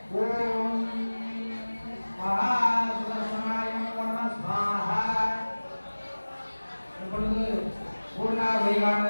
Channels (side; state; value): both; inverted; correlation -1.00